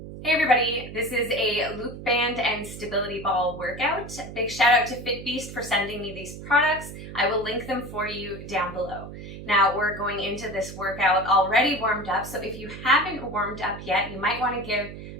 Hey everybody, this is a loop band and stability ball workout. Big shout out to FitBeast for sending me these products. I will link them for you down below. Now we're going into this workout already warmed up, so if you haven't warmed up yet, you might want to give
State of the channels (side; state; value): right; noise; hum, 12 dB below the sound